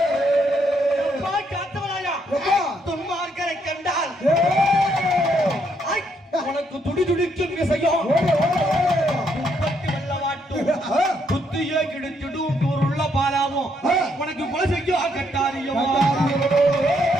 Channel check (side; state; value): both; normal; correlation 0.73